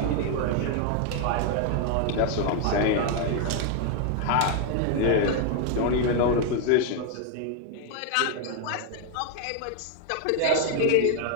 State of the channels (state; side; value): different; both; correlation 0.01